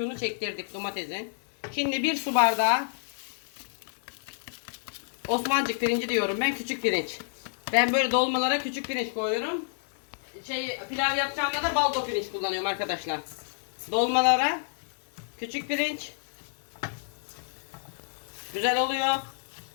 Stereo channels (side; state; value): right; silent; 59 dB below the other